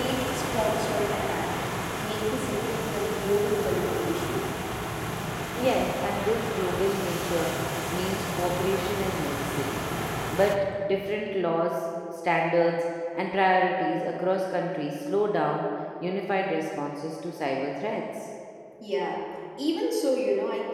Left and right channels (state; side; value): identical; both; correlation 1.00